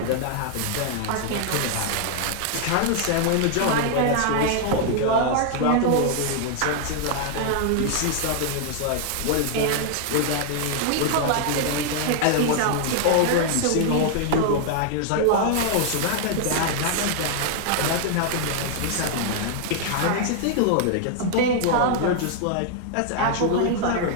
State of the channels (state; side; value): different; both; correlation 0.00